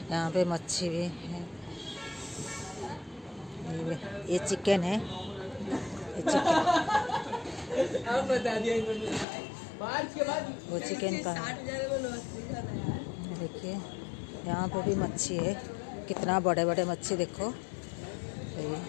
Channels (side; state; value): right; drops out; at 9.2 s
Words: यहाँ पे मच्छी भी है। ये चिकन है, ये चिकन वो चिकन का। देखिए यहाँ पे भी मच्छी है, कितना बड़े बड़े मच्छी देखो।